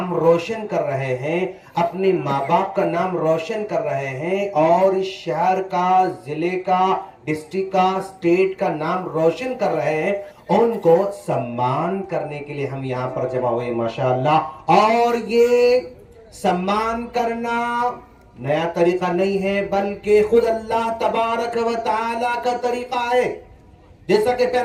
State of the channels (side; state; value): both; identical; correlation 1.00